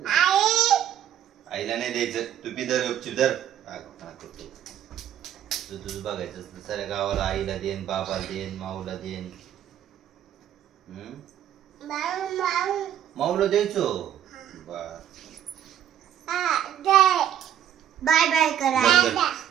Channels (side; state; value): left; quieter; 10.5 dB